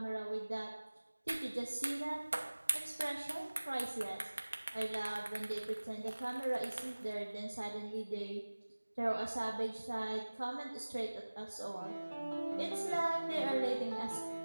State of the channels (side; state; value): both; inverted; correlation -1.00